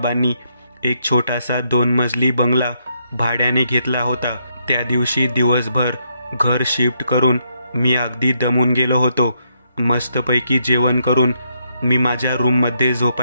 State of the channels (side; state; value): both; inverted; correlation -0.76